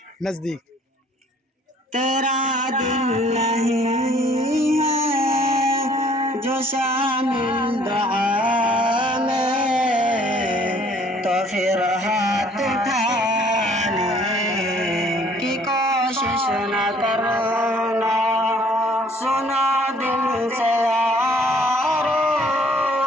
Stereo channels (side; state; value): both; normal; correlation 0.58